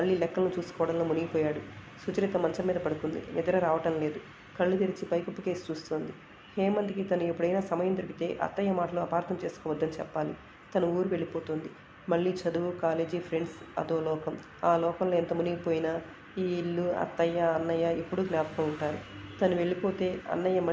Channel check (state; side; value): identical; both; correlation 1.00